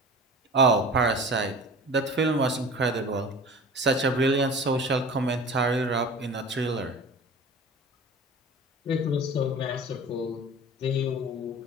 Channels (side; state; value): both; normal; correlation 0.38